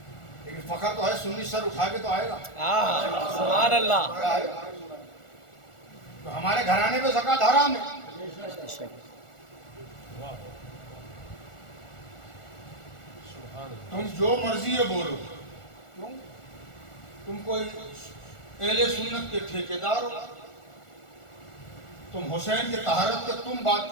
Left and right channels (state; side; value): late; right; 1.4 ms